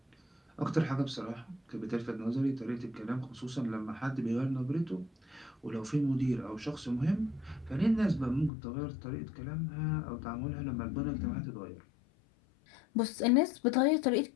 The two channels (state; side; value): drops out; right; at 8.5 s